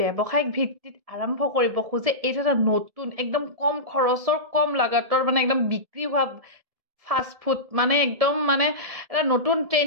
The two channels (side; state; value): left; late; 1.7 ms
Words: ভিত্তিত আৰম্ভ কৰিব খোজে এইটো এটা নতুন একদম কম খৰচৰ কম লাগাতৰ মানে একদম বিক্ৰী হোৱা ফাস্ট ফুড মানে একদম মানে এটা নতুন